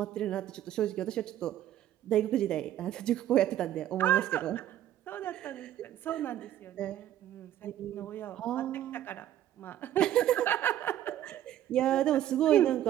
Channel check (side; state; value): left; quieter; 12.0 dB